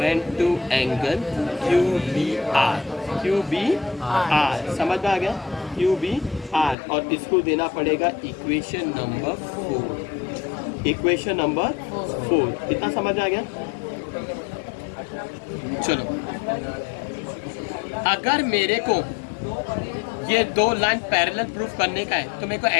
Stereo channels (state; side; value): drops out; right; at 6.8 s